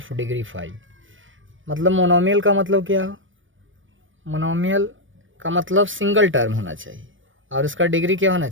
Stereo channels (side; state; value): left; late; 0.56 ms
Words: degree 5। मतलब मोनोमियल का मतलब क्या हो, मोनोमियल का मतलब सिंगल टर्म होना चाहिए और इसका डिग्री क्या होना